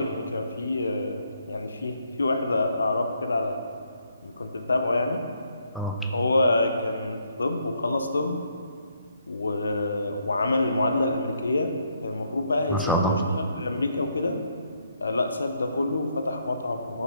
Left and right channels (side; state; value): both; inverted; correlation -0.73